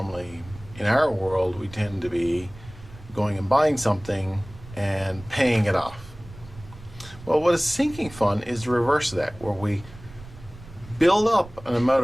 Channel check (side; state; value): right; noise; rumble, 18 dB below the sound